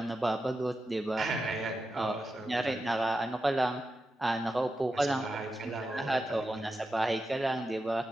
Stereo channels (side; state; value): both; normal; correlation 0.90